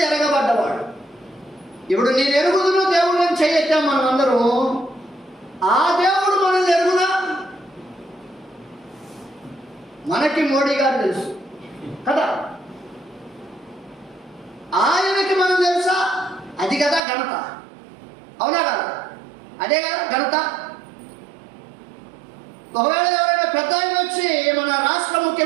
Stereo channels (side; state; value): left; drops out; at 17.0 s